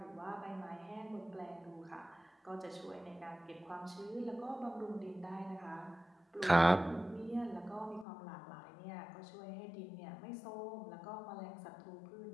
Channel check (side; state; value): right; drops out; at 8.1 s